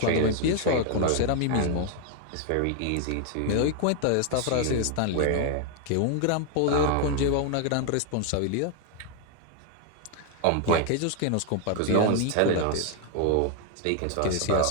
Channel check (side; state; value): both; different; correlation 0.00